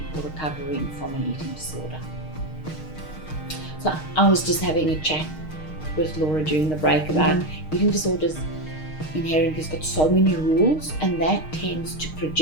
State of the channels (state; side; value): late; right; 6.5 ms